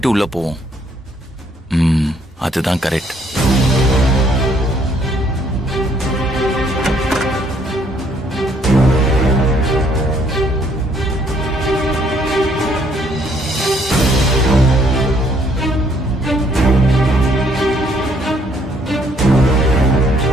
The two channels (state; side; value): normal; both; correlation 0.66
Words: உள்ள போவோம். அதுதான் கரெக்ட்.